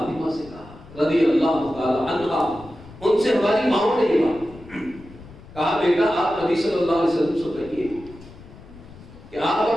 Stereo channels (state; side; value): noise; left; rumble, 19 dB below the sound